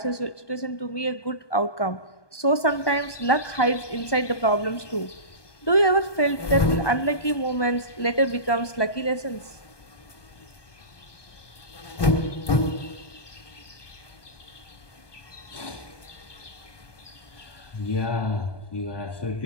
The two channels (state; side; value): late; right; 1.2 ms